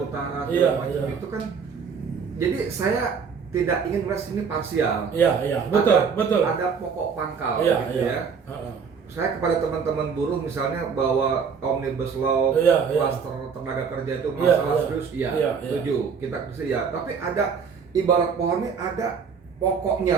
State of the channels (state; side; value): quieter; left; 6.1 dB